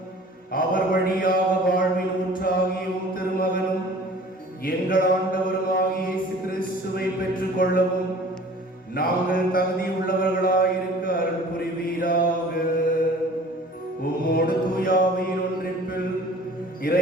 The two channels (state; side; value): normal; both; correlation 0.47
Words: அவர் வழியாக வாழ்வின் ஊற்றாகிய உம் திருமகனும் எங்கள் ஆண்டவருமாகிய இயேசு கிறிஸ்துவை பெற்றுக் கொள்ளவும் நாங்கள் தகுதியுள்ளவர்களாயிருக்க அருள் புரிவீராக. உம்மோடு தூயாவியின் ஒன்றிப்பில்